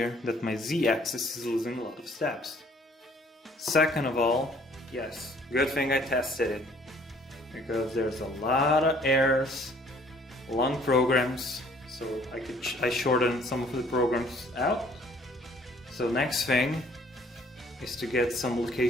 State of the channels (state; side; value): normal; both; correlation 0.58